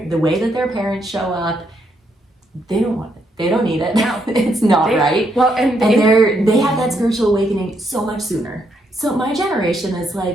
the way that their parents show up, they don't want it. They don't need it. No. It's not right. Well, and they have that spiritual awakening so much sooner. So my generation is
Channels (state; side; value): normal; both; correlation 0.76